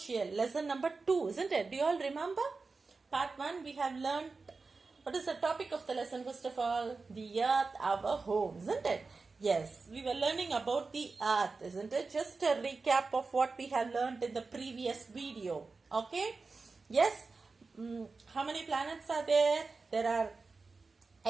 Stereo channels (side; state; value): left; quieter; 4.1 dB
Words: lesson number 2, isn't it? Do you all remember? Part 1, we have learned, what is the topic of the lesson first of all? The earth, our home, isn't it? Yes, we were learning about the earth, isn't it? Just a recap of what we have learned in the previous video. Okay? Yes? How many planets are there? There are